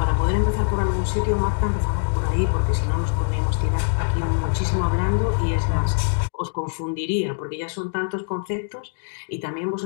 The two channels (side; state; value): right; silent; digital silence